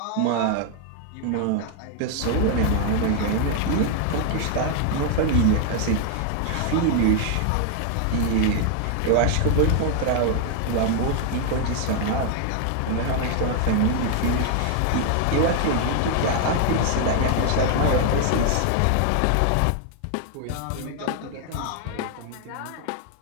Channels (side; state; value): both; different; correlation 0.00